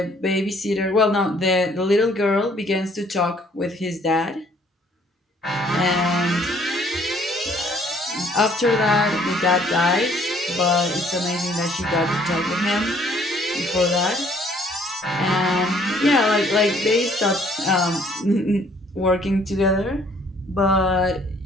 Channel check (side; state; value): both; normal; correlation 0.61